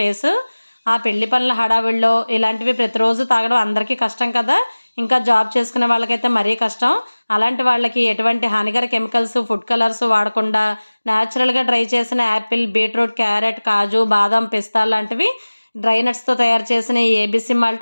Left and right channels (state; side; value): inverted; both; correlation -1.00